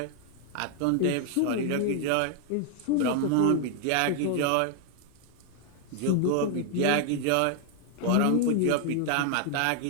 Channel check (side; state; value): both; different; correlation 0.00